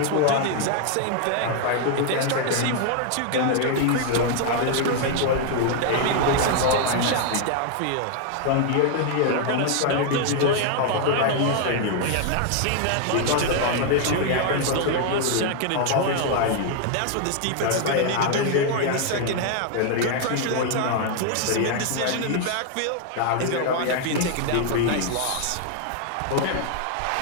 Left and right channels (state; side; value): different; both; correlation 0.00